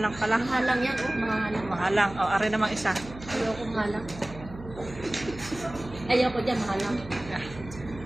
pala. Mahalang yan, oh, mahalang. Mahalang. O, ari namang isa. Ayoko mahalang. Ayoko dyan, mahalang.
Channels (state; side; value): noise; right; hum, 15 dB below the sound